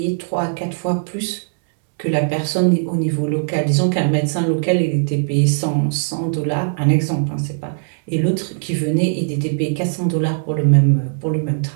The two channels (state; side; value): silent; left; 66 dB below the other